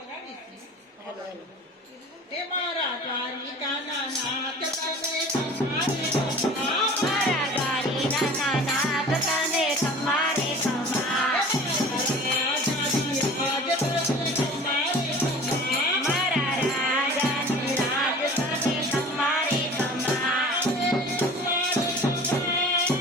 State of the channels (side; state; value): both; normal; correlation 0.42